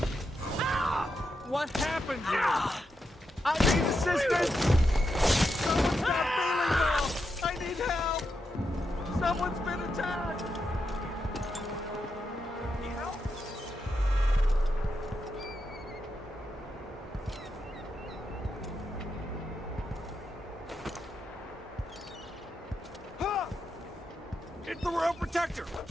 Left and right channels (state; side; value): normal; both; correlation 0.85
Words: What happened here? I need assistance! Someone's not feeling well! I need help! Someone's been attacked! It's the Royal Protector!